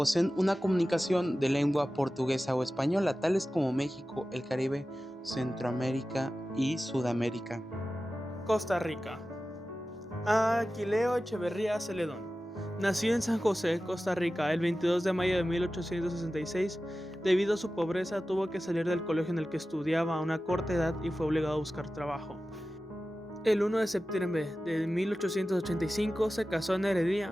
una comunicación de lengua portuguesa o española, tales como México, el Caribe, Centroamérica y Sudamérica. Costa Rica. Aquileo Echeverría Celedón nació en San José, Costa Rica, el 22 de mayo de 1866. Debido a su pobreza, tuvo que salir del colegio en el que estudiaba a una corta edad y fue obligado a buscar trabajo. El 1 de septiembre de 1885 se casó en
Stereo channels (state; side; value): normal; both; correlation 0.95